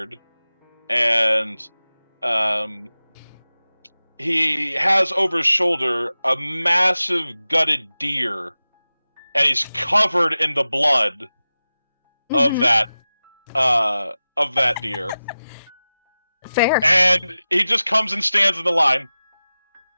and he has over his shoulder a massive gutted deer, and he's covered in the blood of that deer. Fair. And he just comes and stands in the line.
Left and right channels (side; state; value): both; inverted; correlation -0.95